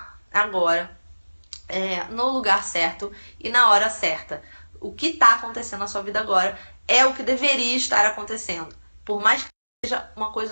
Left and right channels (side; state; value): both; inverted; correlation -1.00